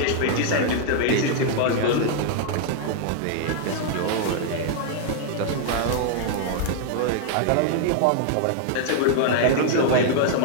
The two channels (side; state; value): both; different; correlation -0.01